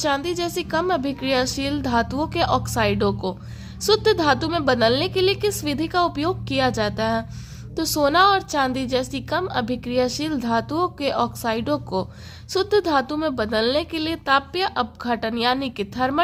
जैसी कम अभिक्रियाशील धातुओं के ऑक्साइडों को शुद्ध धातु में बदलने के लिए किस विधि का उपयोग किया जाता है। तो सोना और चांदी जैसी कम अभिक्रियाशील धातुओं के ऑक्साइडों को शुद्ध धातु में बदलने के लिए तापीय अपघटन यानी कि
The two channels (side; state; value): both; identical; correlation 1.00